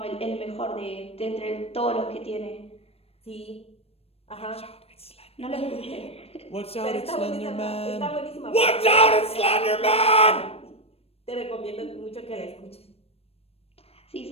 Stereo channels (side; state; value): right; late; 0.28 ms